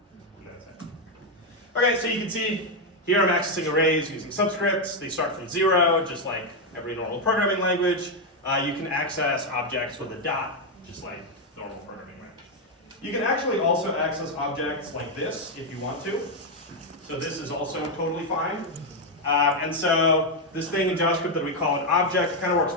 Okay, so you can see here I'm accessing arrays using subscripts. They start from 0, just like every normal programming language. You can access objects with a dot, just like normal programming language. You can actually also access objects like this if you want to. So this is also totally fine. And so this thing in JavaScript that we call an object kind of works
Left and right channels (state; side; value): normal; both; correlation 0.03